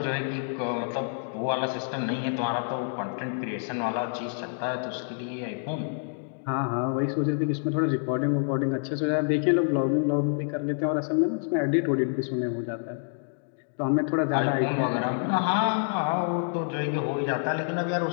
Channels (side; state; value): right; silent; digital silence